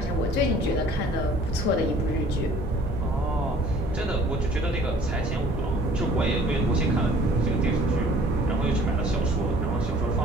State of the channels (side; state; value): both; normal; correlation 0.53